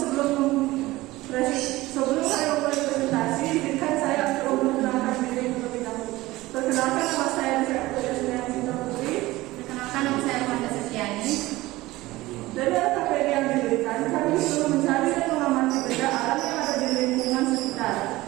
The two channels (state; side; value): quieter; left; 18.7 dB